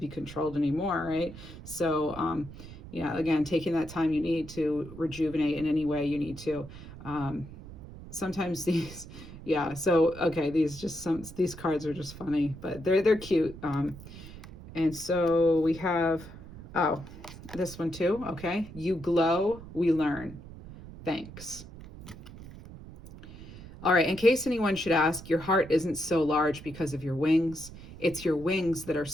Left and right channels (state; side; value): noise; right; rumble, 15 dB below the sound